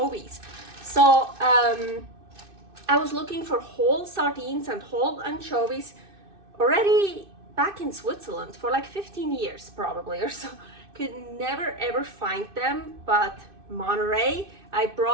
So I was looking for whole sardines and whole anchovies already back in Switzerland for like 15 years probably or so. Could never ever find them, but Monterey, I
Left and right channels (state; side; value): late; left; 2.6 ms